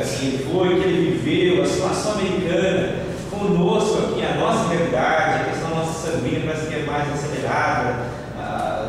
que ele foi, que ele viveu, a situação americana, conosco aqui, a nossa realidade, a questão da nossa sanguínea parece que é mais acelerada,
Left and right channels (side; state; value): both; identical; correlation 1.00